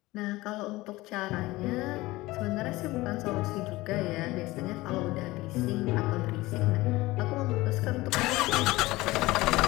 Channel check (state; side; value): quieter; right; 19.5 dB